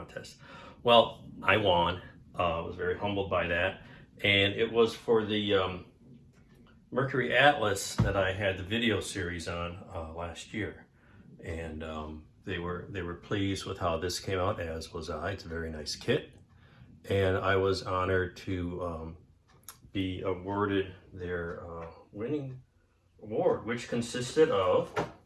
Well, I won. I was very humbled by that, and it was for the Mercury-Atlas that I had the video series on last year, and they were pleased with how this came out, as was I. It's a very nice kit, and I was honored to be awarded their winning award, which consisted of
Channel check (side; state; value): both; identical; correlation 1.00